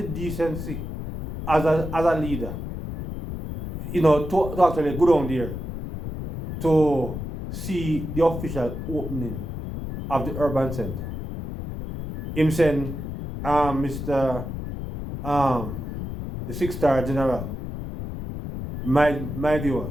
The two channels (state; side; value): noise; left; rumble, 7 dB below the sound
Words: decency as a leader, to actually go down there to see the official opening of the urban center. Him saying, Mr. The 6-star general, my